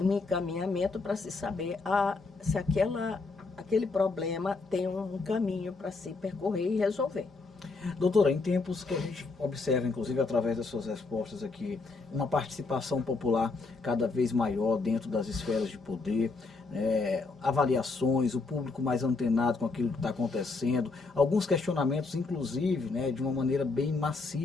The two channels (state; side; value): quieter; right; 3.9 dB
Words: encaminhamento para se saber se aquele problema tem um caminho para se percorrer e resolver. Doutora, em tempos que a gente observa, inclusive através das suas respostas aqui, uma participação popular cada vez maior dentro das esferas de poder, avaliações, o público mais antenado com aquilo que está acontecendo, alguns questionamentos, inclusive, né, de uma maneira bem